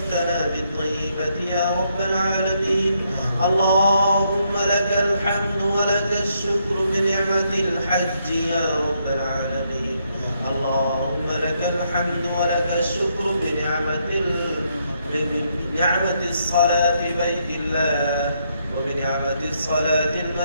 بالطيبات يا رب العالمين. اللهم لك الحمد ولك الشكر بنعمة الحج يا رب العالمين. اللهم لك الحمد ولك الشكر بنعمة الصلاة بيت الله وبنعمة الصلاة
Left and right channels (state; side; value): inverted; both; correlation -0.76